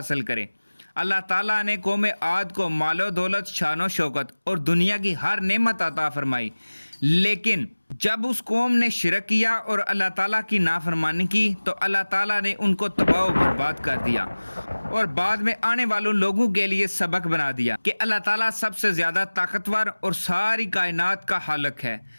کرے۔ اللہ تعالیٰ نے قوم عاد کو مال و دولت، شان و شوکت اور دنیا کی ہر نعمت عطا فرمائی، لیکن جب اس قوم نے شرک کیا اور اللہ تعالیٰ کی نافرمانی کی تو اللہ تعالیٰ نے ان کو تباہ و برباد کر دیا، اور بعد میں آنے والوں لوگوں کے لیے سبق بنا دیا کہ اللہ تعالیٰ سب سے زیادہ طاقتور اور ساری کائنات کا خالق ہے۔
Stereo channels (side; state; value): both; inverted; correlation -1.00